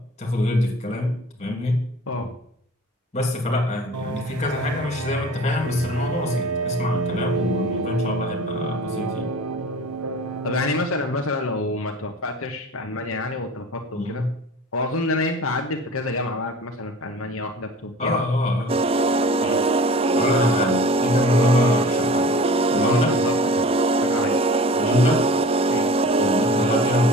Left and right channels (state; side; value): normal; both; correlation 0.42